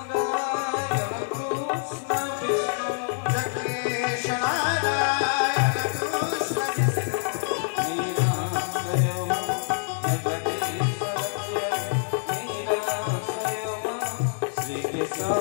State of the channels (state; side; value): silent; right; digital silence